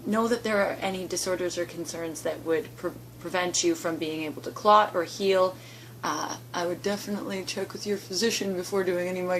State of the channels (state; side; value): identical; both; correlation 1.00